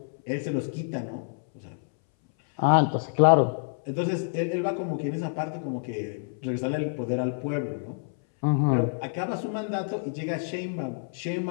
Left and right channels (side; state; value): right; silent; 60 dB below the other